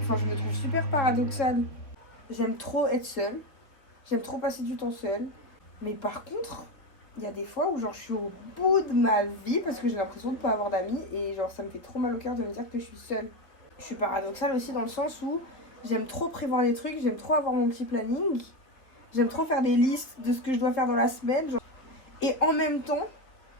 Enfin, je me trouve super paradoxale. J'aime trop être seule. J'aime trop passer du temps seule. Mais par contre, il y a des fois où genre je suis au bout de ma vie parce que j'ai l'impression de pas avoir d'amis. Et genre ça me fait trop mal au cœur de me dire que je suis seule. Je suis paradoxale aussi dans le sens où j'aime trop prévoir les trucs. J'aime trop avoir mon petit planning. J'aime trop faire des listes de ce que je dois faire dans la semaine. Genre. Et en même temps,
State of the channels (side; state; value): right; late; 3.5 ms